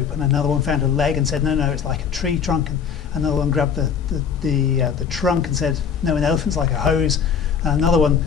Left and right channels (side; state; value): right; quieter; 7.0 dB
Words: and another one found a leg and said, "No, it's like a tree trunk," and another one grabbed the trunk and said, "No, an elephant's like a hose," and another one